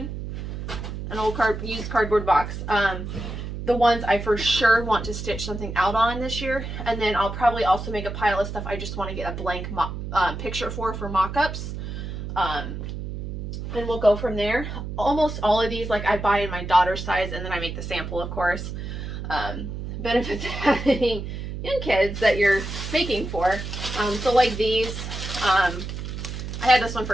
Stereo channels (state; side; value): noise; right; hum, 6 dB below the sound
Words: an old used cardboard box. The ones I for sure want to stitch something out on this year, and then I'll probably also make a pile of stuff I just want to get a blank picture for mock-ups. And we'll go from there. Almost all of these, like, I buy in my daughter's size, and then I make the sample, of course. Benefits of having young kids that you're making for. So like these, I had this one for